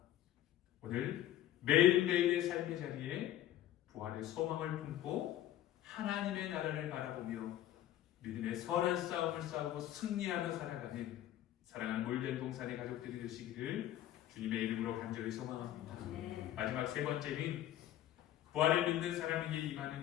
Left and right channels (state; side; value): quieter; right; 12.6 dB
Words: 오늘 매일매일의 삶의 자리에 부활의 소망을 품고 하나님의 나라를 바라보며 믿음의 선한 싸움을 싸우고 승리하며 살아가는 사랑하는 몰된 동산의 가족들이 되시기를 주님의 이름으로 간절히 소망합니다. 마지막 세 번째는 부활을 믿는 사람에게 임하는